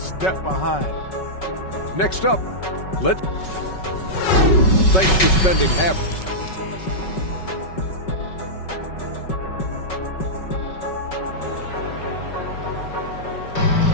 behind. Next up, thanks for spending half.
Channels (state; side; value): late; right; 5.3 ms